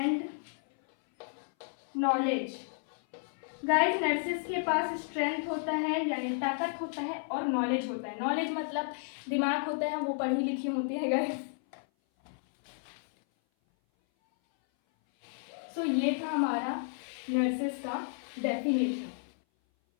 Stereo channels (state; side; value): silent; right; 56 dB below the other